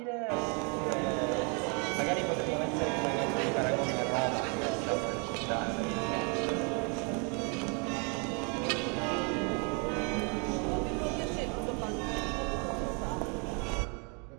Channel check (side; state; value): left; quieter; 35.7 dB